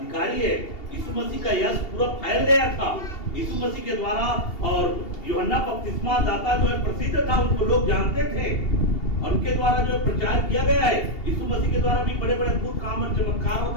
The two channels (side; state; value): right; late; 2.8 ms